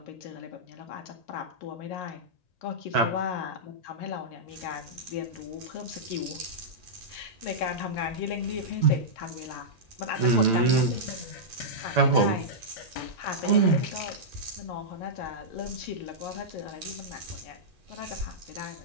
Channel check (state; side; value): late; right; 1.9 ms